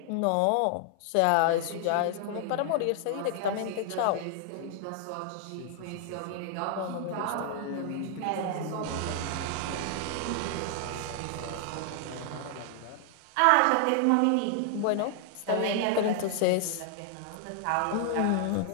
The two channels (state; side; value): different; both; correlation 0.00